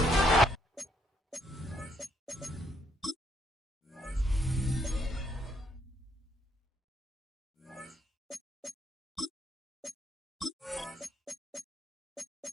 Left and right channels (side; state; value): both; normal; correlation 0.72